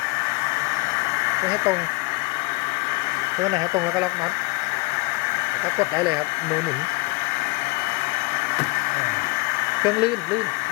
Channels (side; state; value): right; quieter; 25.5 dB